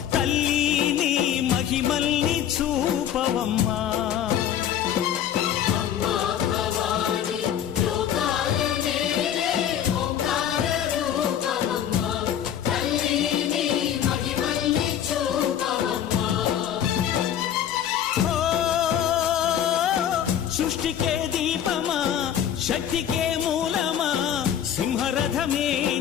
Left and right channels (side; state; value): right; quieter; 9.9 dB